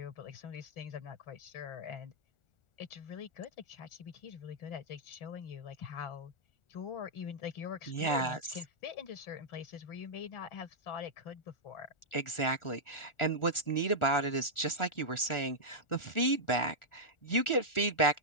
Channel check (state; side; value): late; right; 1.4 ms